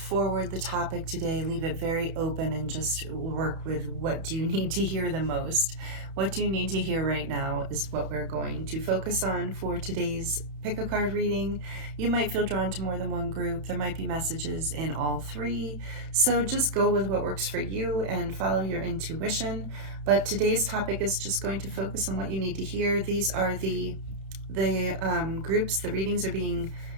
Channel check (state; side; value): late; left; 31 ms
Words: the topic today, leave it very open, and just work with what do you need to hear the most. What do you need to hear right now is what we're going to focus on for today's pick a card reading. You might feel drawn to more than one group. There might be messages in all three. So just go with what works for you and follow your intuition. But today's topic is just going to focus on what you need to hear. These are the groups. The readings are being